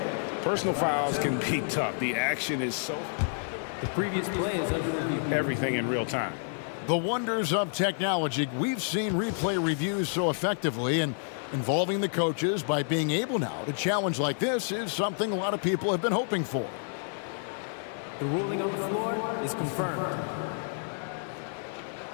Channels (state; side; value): silent; right; digital silence